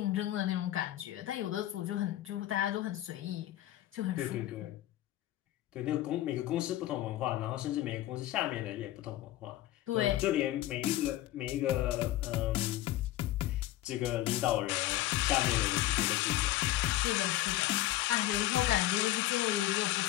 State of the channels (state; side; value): quieter; right; 14.8 dB